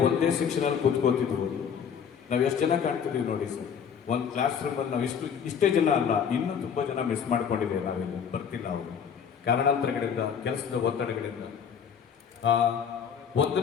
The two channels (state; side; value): quieter; right; 7.4 dB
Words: ಒಂದೇ ಸೆಕ್ಷನಲ್ಲಿ ಕೂತ್ಕೋತಿದ್ವು. ನಾವು ಎಷ್ಟು ಜನ ಕಾಣ್ತಿದ್ದೀವಿ ನೋಡಿ ಸರ್. ಒಂದು ಕ್ಲಾಸ್ ರೂಮಲ್ಲಿ ನಾವು ಇಷ್ಟೇ ಜನ ಅಲ್ಲ, ಇನ್ನೂ ತುಂಬ ಜನ ಮಿಸ್ ಮಾಡ್ಕೊಂಡಿದ್ದೇವೆ. ನಾವಿಲ್ಲಿ ಬರ್ತಿಲ್ಲ ಅವರು ಕಾರಣಾಂತರಗಳಿಂದ, ಕೆಲಸದ ಒತ್ತಡಗಳಿಂದ.